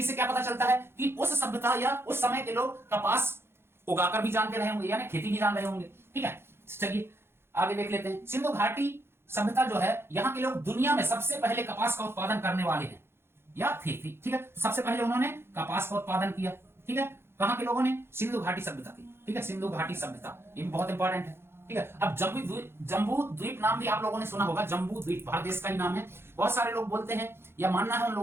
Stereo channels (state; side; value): late; left; 0.12 ms